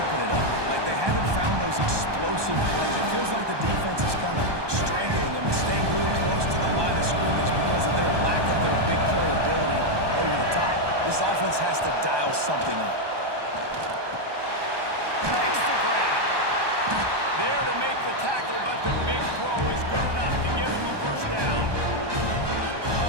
it up. Like, they haven't found those explosive plays. It feels like the defense is kind of strangling them and staying really close to the line of scrimmage because of their lack of their big play ability over the top. This offense has to dial something up. Makes the grab. There to make the tackle, but the big throw is good enough to give him a first down.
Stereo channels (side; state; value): left; late; 1.2 ms